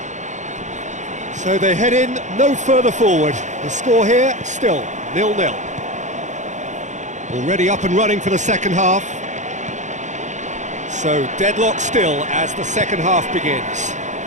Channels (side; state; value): left; late; 0.35 ms